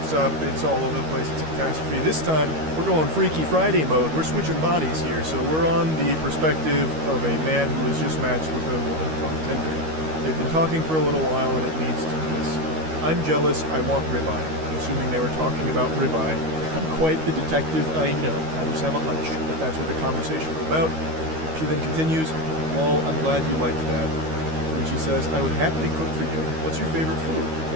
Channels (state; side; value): late; left; 13 ms